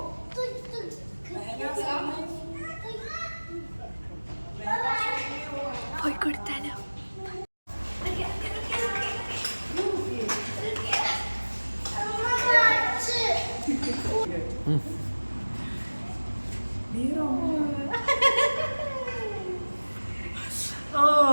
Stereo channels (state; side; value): inverted; both; correlation -1.00